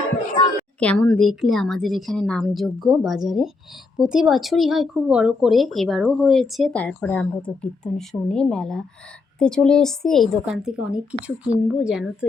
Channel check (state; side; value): quieter; right; 3.9 dB